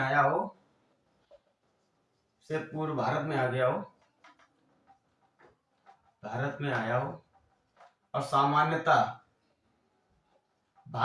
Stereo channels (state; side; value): identical; both; correlation 1.00